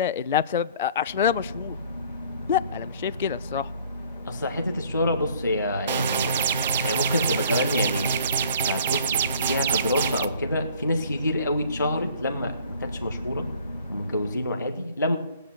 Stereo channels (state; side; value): inverted; both; correlation -0.54